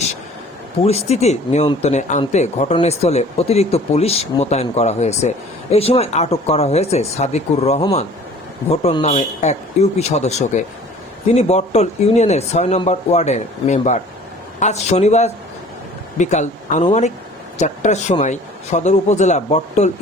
পরিস্থিতি নিয়ন্ত্রণে আনতে ঘটনাস্থলে অতিরিক্ত পুলিশ মোতায়েন করা হয়েছে। এই সময় আটক করা হয়েছে সাদিকুর রহমান ভোটন নামে এক ইউপি সদস্যকে। তিনি বটতল ইউনিয়নের 6 নম্বর ওয়ার্ডের মেম্বার। আজ শনিবার বিকাল আনুমানিক 4টার সময় সদর উপজেলা বটতল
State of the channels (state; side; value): normal; both; correlation 0.49